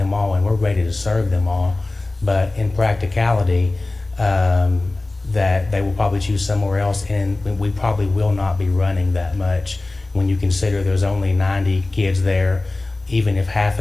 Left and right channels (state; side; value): quieter; right; 3.0 dB